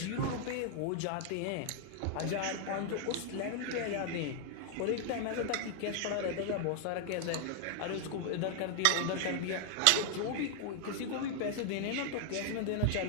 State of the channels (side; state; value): both; different; correlation 0.00